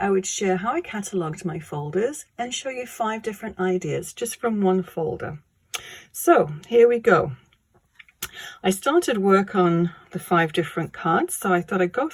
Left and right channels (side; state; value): both; identical; correlation 1.00